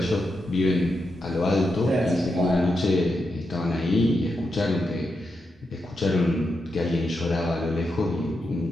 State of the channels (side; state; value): both; normal; correlation 0.85